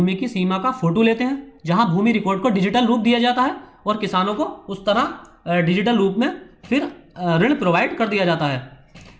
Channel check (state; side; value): identical; both; correlation 1.00